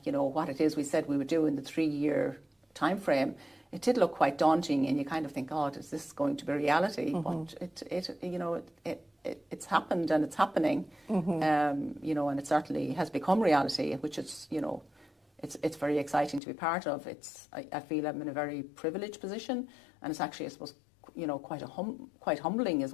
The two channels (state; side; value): drops out; right; at 16.4 s